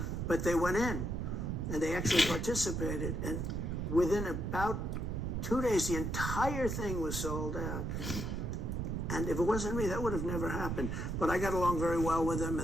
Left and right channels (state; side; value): noise; right; rumble, 2 dB below the sound